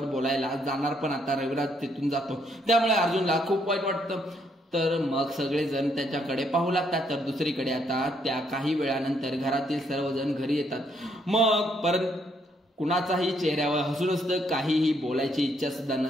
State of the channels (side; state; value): both; normal; correlation 0.72